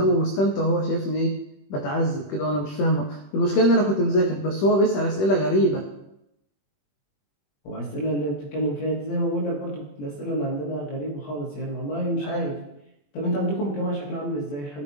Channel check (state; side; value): late; right; 21 ms